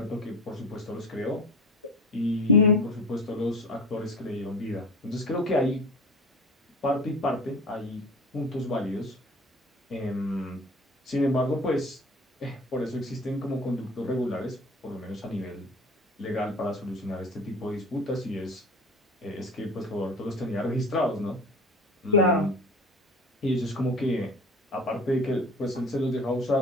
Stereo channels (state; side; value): normal; both; correlation 0.36